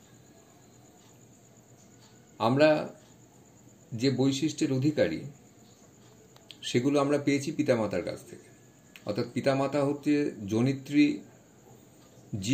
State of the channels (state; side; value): identical; both; correlation 1.00